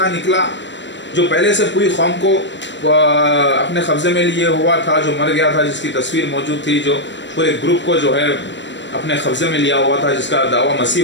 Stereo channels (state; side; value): late; right; 0.53 ms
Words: نکلا جو پہلے سے پوری قوم کو اپنے قبضے میں لیے ہوا تھا، جو مر گیا تھا، جس کی تصویر موجود تھی، جو پورے گروپ کو جو ہے اپنے قبضے میں لیا ہوا تھا، جس کا دعویٰ